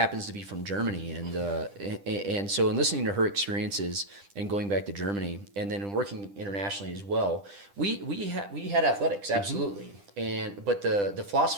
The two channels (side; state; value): left; late; 10 ms